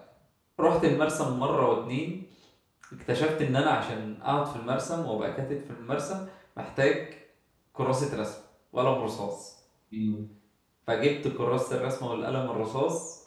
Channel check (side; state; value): both; identical; correlation 1.00